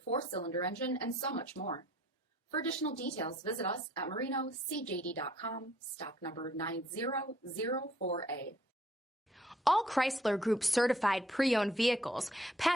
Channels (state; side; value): normal; both; correlation 0.61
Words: 4-cylinder engine, and so much more. For additional details, visit us at marinocjd.com, stock number 9004A. All Chrysler Group certified pre-owned vehicles